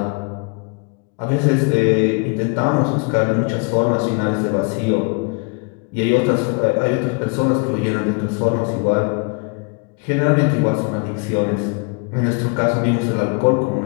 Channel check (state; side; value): quieter; right; 33.6 dB